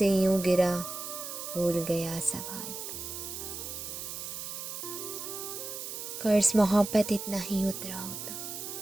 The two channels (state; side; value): noise; right; hiss, 7 dB below the sound